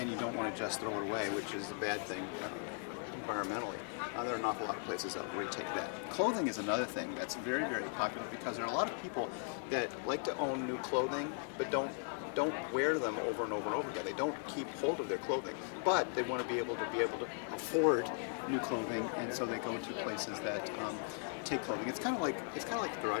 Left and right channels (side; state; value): right; silent; 52 dB below the other